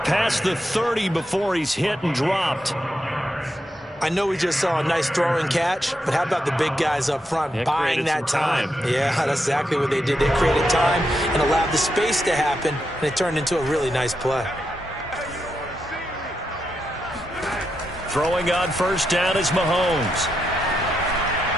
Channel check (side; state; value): both; normal; correlation 0.84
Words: past the 30 before he's hit and dropped. I know we just saw a nice throw and catch, but how about the big guys up front buying that time? Yeah, that's exactly what they did. They created time and allowed the space to happen, and it turned into a really nice play. Throwing on 1st down is Mahomes.